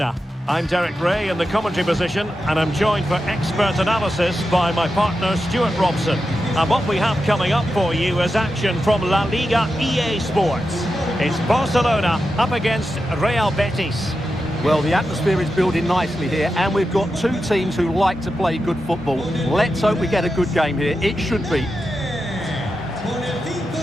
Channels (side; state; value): both; normal; correlation 0.89